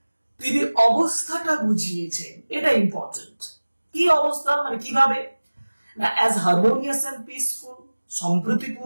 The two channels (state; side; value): inverted; both; correlation -1.00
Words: তিনি অবস্থাটা বুঝিয়েছেন, এটা ইম্পর্টেন্ট। কি অবস্থা মানে কিভাবে? না as harmonious and peaceful,